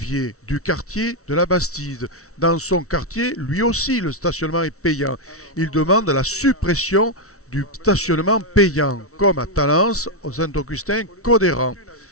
du quartier de la Bastide. Dans son quartier, lui aussi, le stationnement est payant. Il demande la suppression du stationnement payant, comme à Talence, au Saint-Augustin, Codéran.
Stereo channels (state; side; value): late; right; 0.64 ms